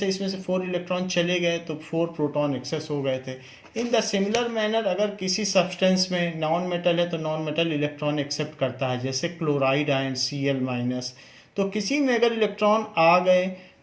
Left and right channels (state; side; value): identical; both; correlation 1.00